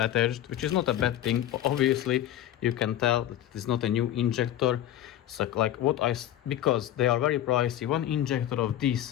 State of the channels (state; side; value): quieter; right; 12.3 dB